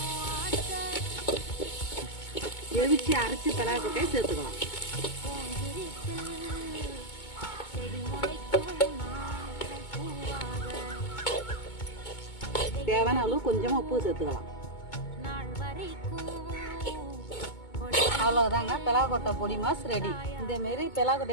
எவிச்சு அரைச்சி பிளவு கொட்டையை சேர்த்துக்கலாம். தேவையான அளவு கொஞ்சமாக உப்பு சேர்த்துக்கலாம். அவ்வளோதாங்க, பிளவு கொட்டை பொடி மாஸ் ரெடி. இதேமாரி பிளவு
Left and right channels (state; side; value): late; right; 2.2 ms